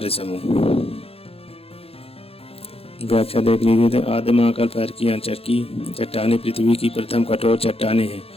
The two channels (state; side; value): late; right; 0.28 ms